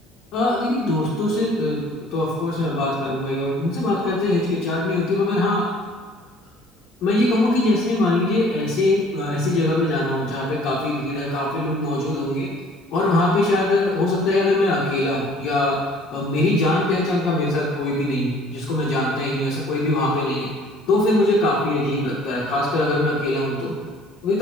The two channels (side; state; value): both; normal; correlation 0.54